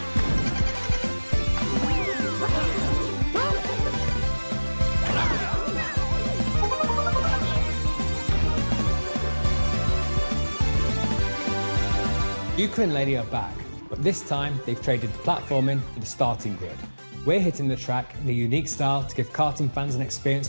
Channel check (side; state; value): both; inverted; correlation -1.00